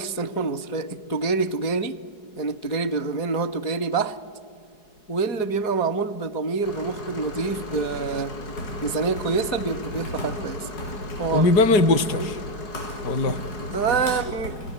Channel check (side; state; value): right; late; 4.8 ms